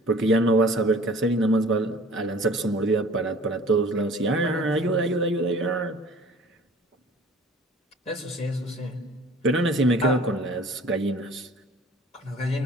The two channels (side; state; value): both; normal; correlation 0.48